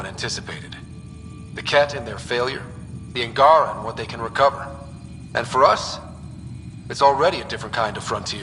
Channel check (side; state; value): both; identical; correlation 1.00